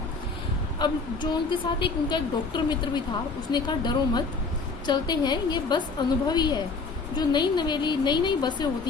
अब जो उनके साथ उनका एक डॉक्टर मित्र भी था, उसने कहा डरो मत, चलते हैं, ये बस अनुभवी है। जो नई बसें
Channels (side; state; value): right; quieter; 4.3 dB